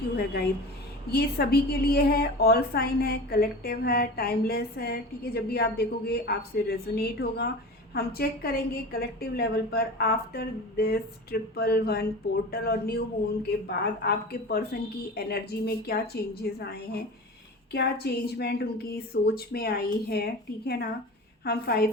यू है गाइज। ये सभी के लिए है, ऑल साइन है, कलेक्टिव है, टाइमलेस है। ठीक है, जब भी आप देखोगे आपसे रेजोनेट होगा। हम चेक करेंगे कलेक्टिव लेवल पर आफ्टर दिस 111 पोर्टल और न्यू मून के बाद आपके पर्सन की एनर्जी में क्या चेंजेस आए हैं, क्या चेंजमेंट उनकी सोच में आई है। ठीक है ना। हम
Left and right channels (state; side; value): normal; both; correlation 0.33